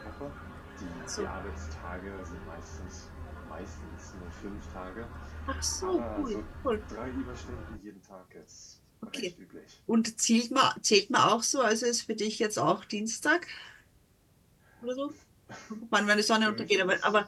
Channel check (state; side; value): identical; both; correlation 1.00